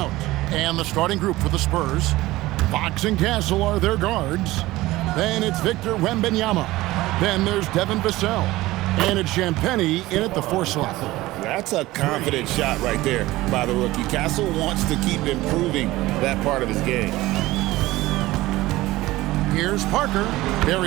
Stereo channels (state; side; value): quieter; left; 18.1 dB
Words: And the starting group for the Spurs. Fox and Castle are their guards. Then it's Victor Wembanyama. Then there's Devin Vassell. And it's Champagnie in at the 4 slot. That's a confident shot right there by the rookie. Castle wants to keep improving that part of his game. Here's Parker.